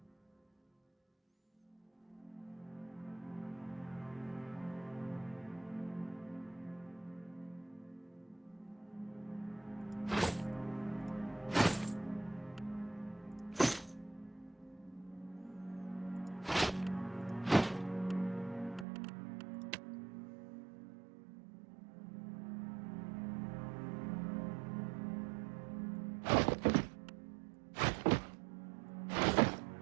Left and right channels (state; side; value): drops out; left; at 18.9 s